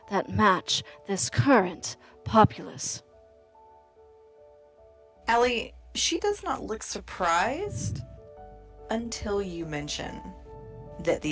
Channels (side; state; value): both; identical; correlation 1.00